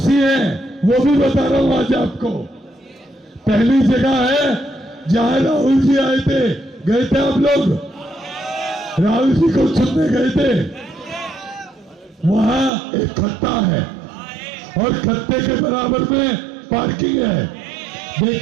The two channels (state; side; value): drops out; left; at 12.7 s